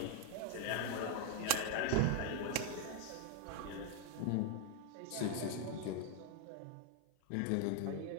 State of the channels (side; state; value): both; different; correlation 0.00